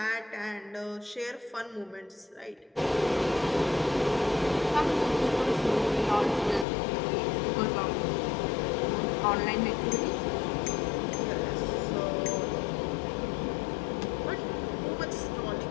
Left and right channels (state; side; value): drops out; right; at 6.7 s